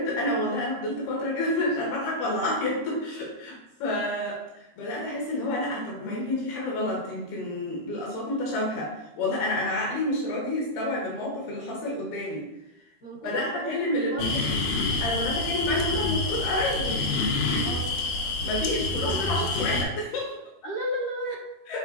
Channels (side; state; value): right; late; 13 ms